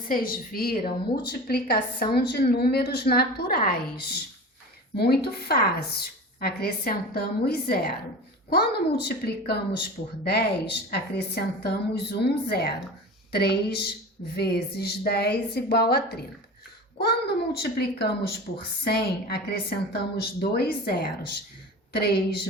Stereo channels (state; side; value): normal; both; correlation 0.33